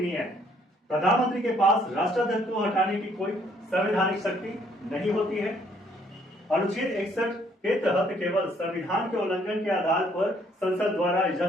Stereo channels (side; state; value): both; normal; correlation 0.65